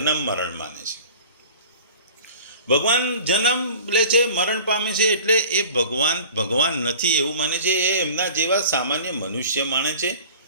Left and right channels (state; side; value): inverted; both; correlation -0.43